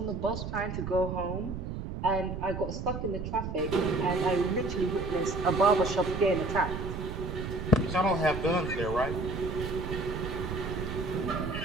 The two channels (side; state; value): right; noise; rumble, 6 dB below the sound